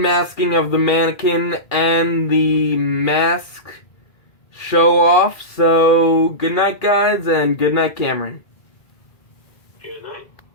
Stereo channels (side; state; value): right; late; 2.0 ms